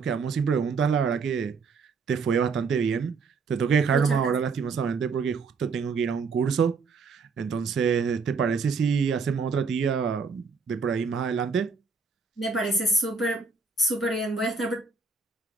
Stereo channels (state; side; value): quieter; left; 4.9 dB